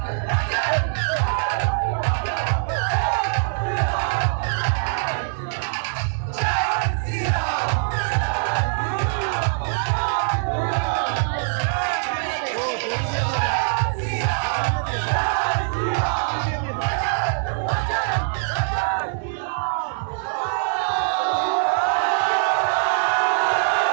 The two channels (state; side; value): silent; left; 60 dB below the other